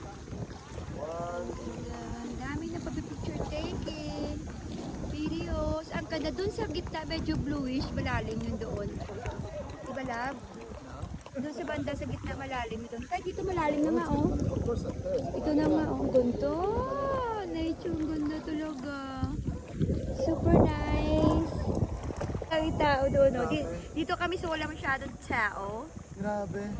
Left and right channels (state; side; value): identical; both; correlation 1.00